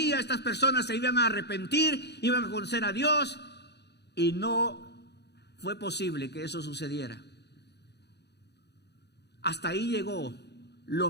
estas personas se iban a arrepentir, iban a conocer a Dios. Y no fue posible que eso sucediera. Hasta ahí llegó lo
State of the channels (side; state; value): right; late; 0.49 ms